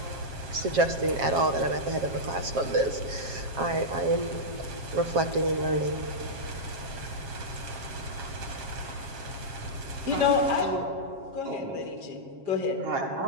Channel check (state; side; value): late; left; 7.4 ms